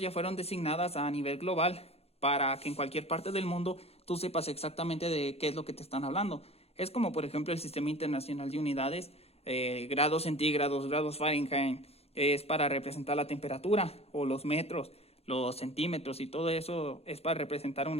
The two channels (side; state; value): right; late; 0.29 ms